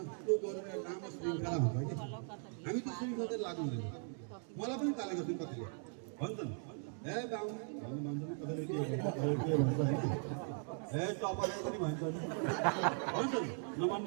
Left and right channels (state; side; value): silent; left; 52 dB below the other